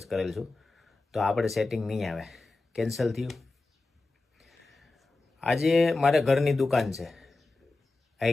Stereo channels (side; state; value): right; quieter; 3.3 dB